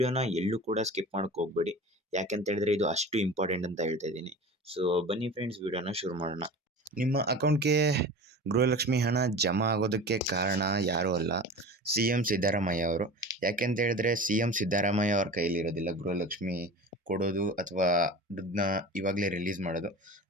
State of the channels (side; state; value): both; normal; correlation 0.35